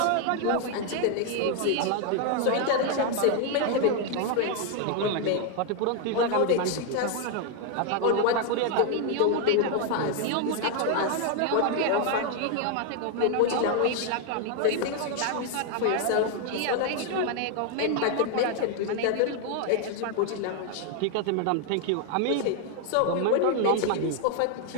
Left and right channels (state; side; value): different; both; correlation 0.00